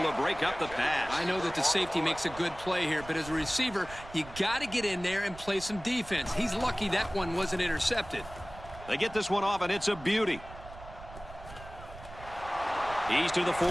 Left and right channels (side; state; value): right; noise; rumble, 16 dB below the sound